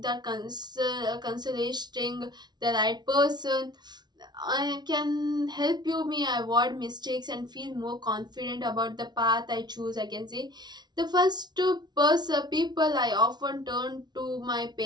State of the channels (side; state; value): left; late; 0.20 ms